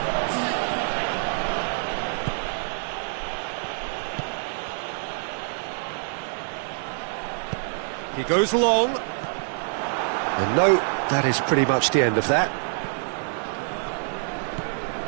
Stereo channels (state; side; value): silent; left; 61 dB below the other